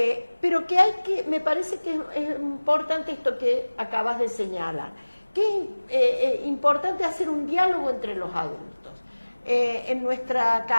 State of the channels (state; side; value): inverted; both; correlation -1.00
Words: pero que me parece que es importante esto que acabas de señalar, que es importante hacer un diálogo entre los adultos. En nuestra